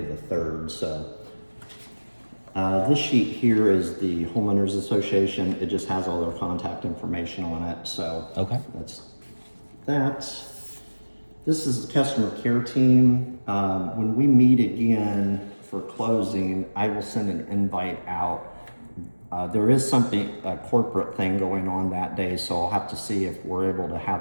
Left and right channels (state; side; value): inverted; both; correlation -1.00